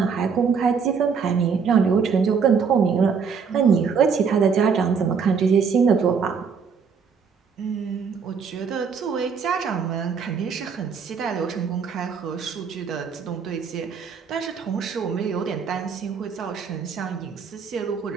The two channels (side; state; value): left; quieter; 6.0 dB